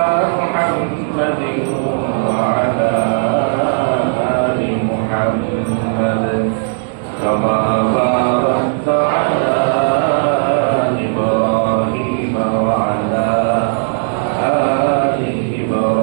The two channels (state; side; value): silent; left; digital silence